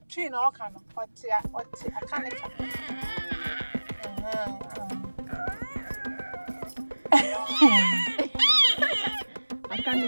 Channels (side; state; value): both; inverted; correlation -1.00